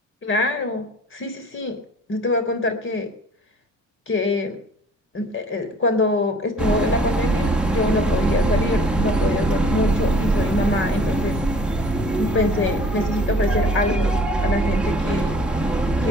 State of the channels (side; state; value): both; normal; correlation 0.52